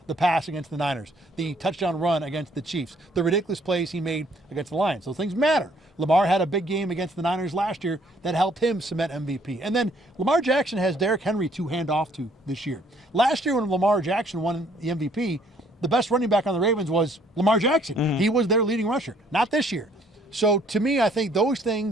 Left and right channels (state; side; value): normal; both; correlation 0.63